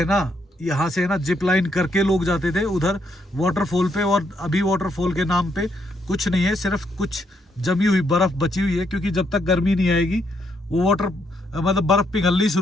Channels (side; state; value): both; normal; correlation 0.75